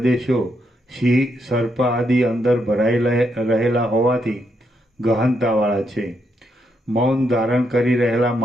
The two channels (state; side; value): normal; both; correlation 0.79